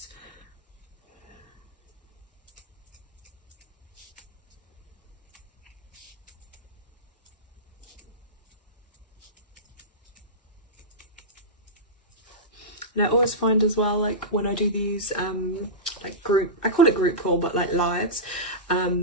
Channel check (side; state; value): both; normal; correlation -0.14